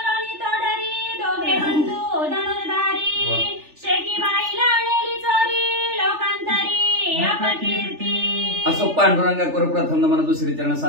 तोडरी दोघे बंधू धनुर्धारी शेकी बाईला नेली चोरी लोकांतरी अपकीर्ती. असो पांडुरंगा कर प्रथम नमन दुसरी चरण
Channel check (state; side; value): late; left; 3.4 ms